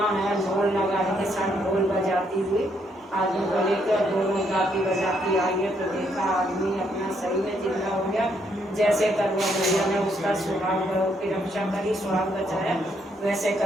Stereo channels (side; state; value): both; normal; correlation 0.73